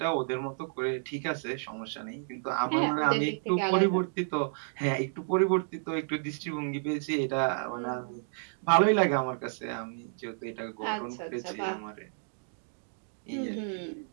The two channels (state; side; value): silent; left; digital silence